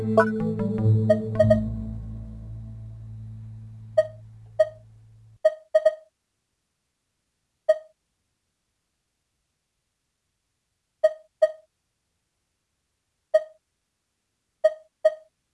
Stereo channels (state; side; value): identical; both; correlation 1.00